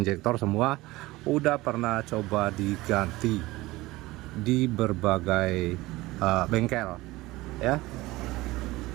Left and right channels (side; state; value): left; quieter; 19.4 dB